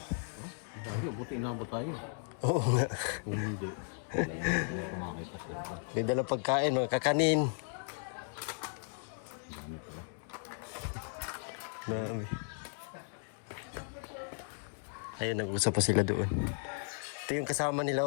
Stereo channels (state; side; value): silent; right; 54 dB below the other